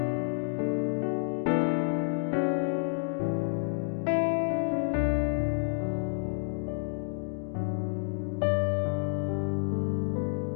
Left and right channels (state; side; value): silent; right; 58 dB below the other